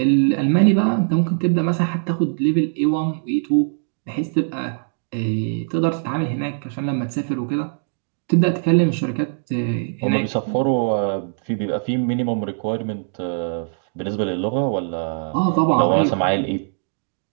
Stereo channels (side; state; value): left; silent; digital silence